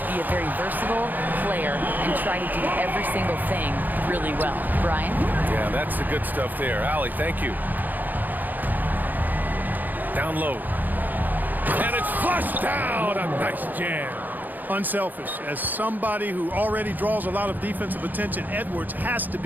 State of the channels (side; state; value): left; late; 0.085 ms